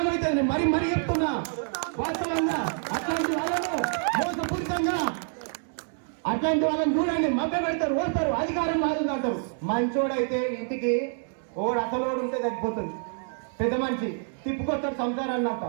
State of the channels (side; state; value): left; silent; 60 dB below the other